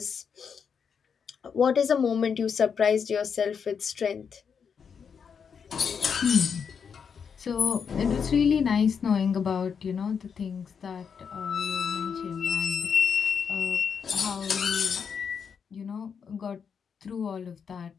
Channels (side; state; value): right; quieter; 6.6 dB